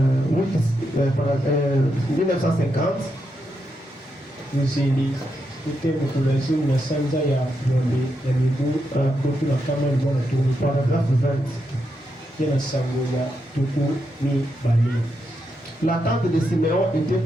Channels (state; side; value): normal; both; correlation 0.83